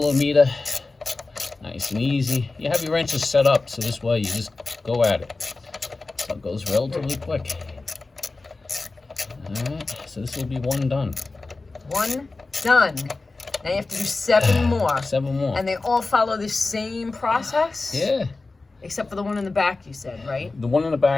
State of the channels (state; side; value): quieter; right; 3.5 dB